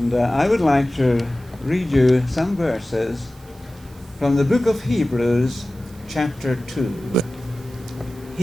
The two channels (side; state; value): right; noise; hiss, 27 dB below the sound